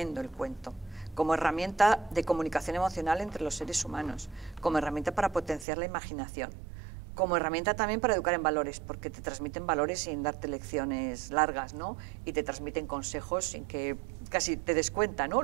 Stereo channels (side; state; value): left; drops out; at 5.7 s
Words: el cuento, como herramienta de comunicación emocional entre los seres humanos, como herramienta para potenciar la imaginación, como herramienta también para educar en valores, porque te transmiten valores sin darte lecciones largas, ¿no? Y te transmiten consejos sin que casi te des cuenta, ¿no?